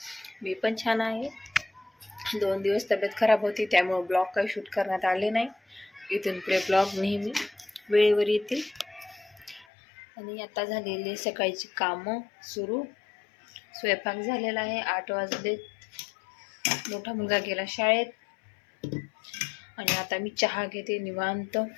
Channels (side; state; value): right; drops out; at 9.7 s